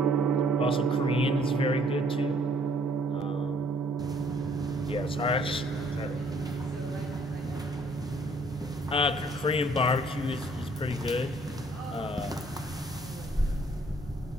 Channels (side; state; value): both; normal; correlation 0.61